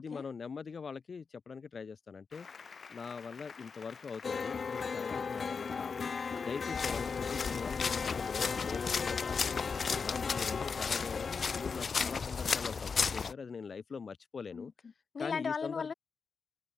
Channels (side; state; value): right; quieter; 5.3 dB